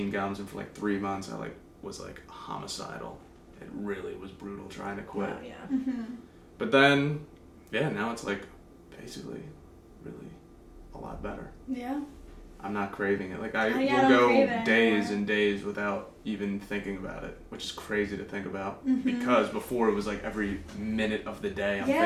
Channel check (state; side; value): identical; both; correlation 1.00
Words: gums, and for like 3 months I like was like homicidal. It really was brutal trying to quit. Oh, yeah. But then, yeah, now it's like basically really a lot better. Yeah. I'm not craving it. Like I don't will go crave it days anymore. and days without even thinking about it, which is crazy to think about because before it was like every minute of the day I'm